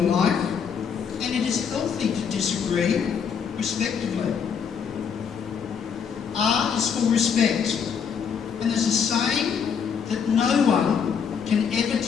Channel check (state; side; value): quieter; right; 6.9 dB